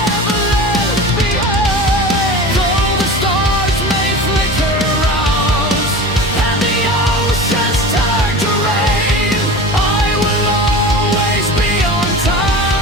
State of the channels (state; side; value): normal; both; correlation 0.33